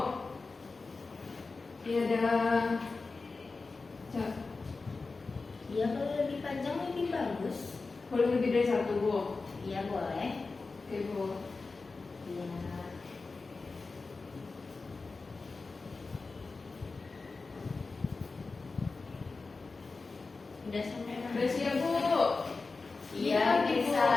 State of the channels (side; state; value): right; quieter; 4.0 dB